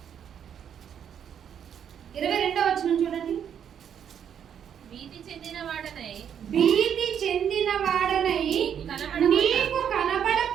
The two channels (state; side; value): quieter; left; 8.6 dB